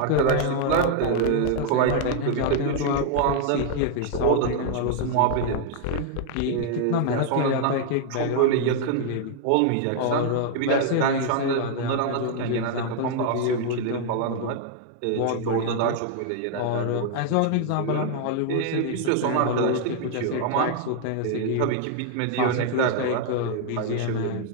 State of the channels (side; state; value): both; different; correlation 0.00